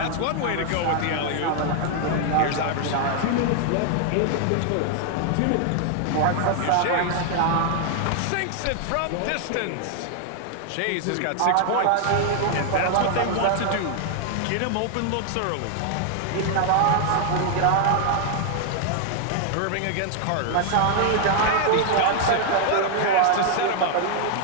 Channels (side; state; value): both; different; correlation 0.00